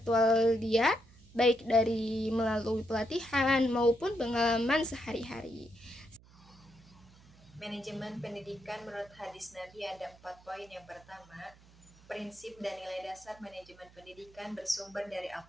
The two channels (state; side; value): noise; right; hum, 25 dB below the sound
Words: dia, baik dari melalui pelatihan maupun pengalaman sehari-hari. Manajemen pendidikan menurut hadis Nabi ada 4 poin. Yang pertama, prinsip dan nilai dasar manajemen pendidikan bersumber dari